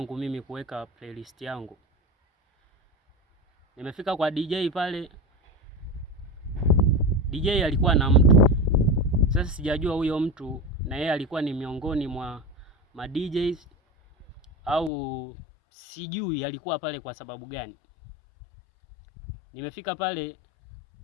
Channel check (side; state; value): right; drops out; at 14.9 s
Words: mimi kuweka playlist yangu. Nimefika kwa DJ pale, DJ alikuwa na mtu. Sasa sijajua huyo mtu na yeye alikuwa ni miongoni mwa ma DJs au sijui alikuwa pale kwa sababu gani. Nimefika pale